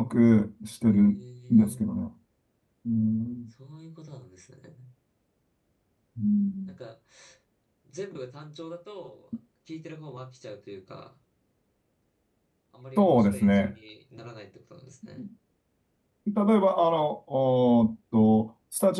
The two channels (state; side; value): identical; both; correlation 1.00